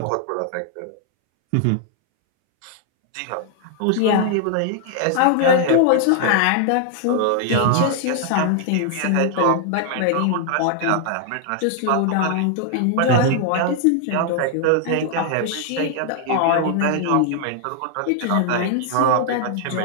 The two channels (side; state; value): both; different; correlation 0.00